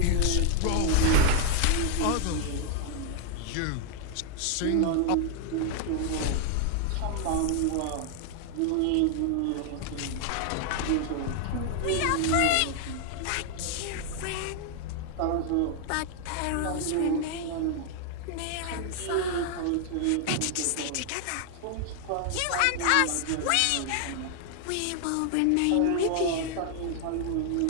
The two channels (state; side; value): different; both; correlation 0.00